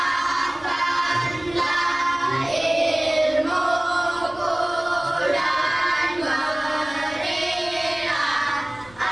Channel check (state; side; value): noise; left; rumble, 24 dB below the sound